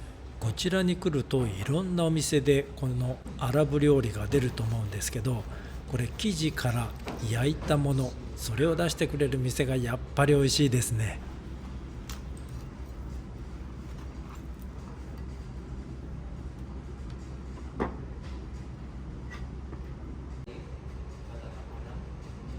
こちらに来るといろんなお店でこのアラブ料理が出ると思うんですけど、これ生地から焼いたもの、それを出してくれる店がやっぱり美味しいですね。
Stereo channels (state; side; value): identical; both; correlation 1.00